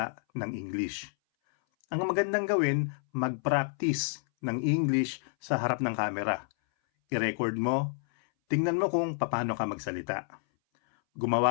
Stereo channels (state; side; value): silent; right; 58 dB below the other